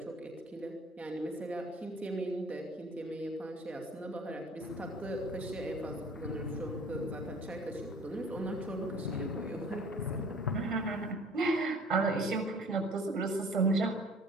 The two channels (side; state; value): both; normal; correlation 0.49